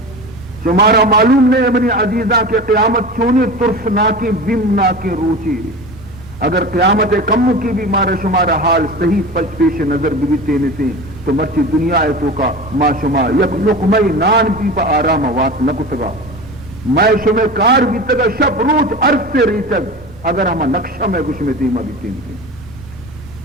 شمارا معلوم نہیں اپنی عزیزہ کے قیامت چونے طرف نہ کی بم نہ کی روچی، اگر قیامت کم کی بھی مارا شمارا حال صحیح پچ پیش نظر بھی تینے سے تو مرچی دنیا ہے تو کا ما شما یک لقمئی نان پی پا آرام وات نہ کتگا میں شمع کار بھی تگا شب روز عرض سے ریچگ اگر ہما نقشہ میں گش میں دیما بھی تین کے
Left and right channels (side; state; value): both; normal; correlation 0.31